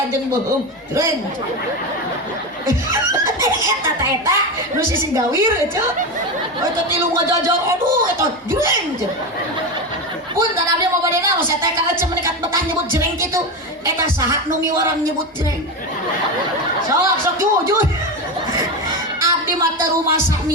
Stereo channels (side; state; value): both; normal; correlation 0.17